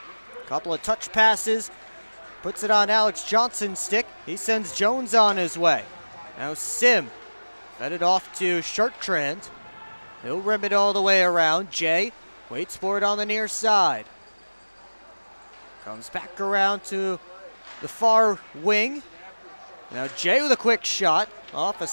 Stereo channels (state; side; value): inverted; both; correlation -1.00